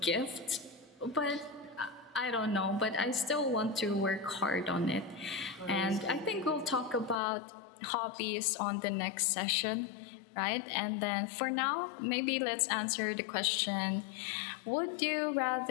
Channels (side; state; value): right; drops out; at 7.2 s